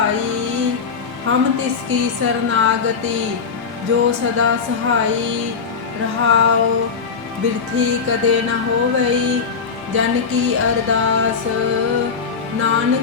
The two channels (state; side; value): quieter; right; 5.6 dB